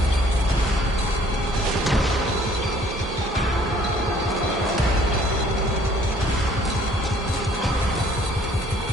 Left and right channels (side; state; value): both; normal; correlation 0.58